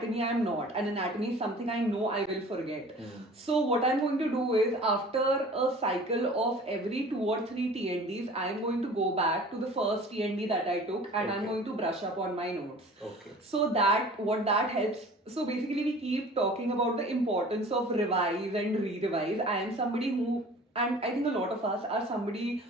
I'm not. And anatomy is something I know I will forget. So what I'm going to do is after a cycle of every 2 or 3 TNDs, I'm going to go back to the first TND that I took and I'm going to brush up on my notes. Okay. So that what that helps. So basically we keep talking about the importance of revise and re-revise. I am somebody who, and I think a lot of us are somebody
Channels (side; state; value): both; normal; correlation 0.44